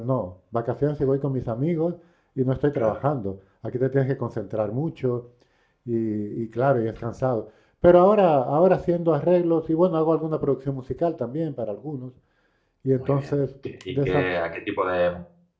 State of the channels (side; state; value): both; identical; correlation 1.00